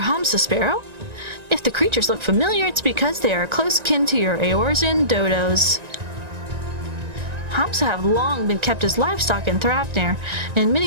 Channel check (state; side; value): late; left; 1.9 ms